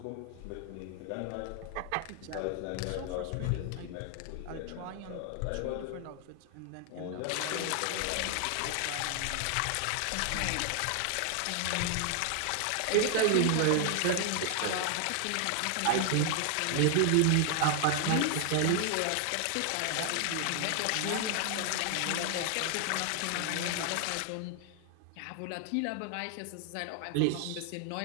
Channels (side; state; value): both; different; correlation 0.00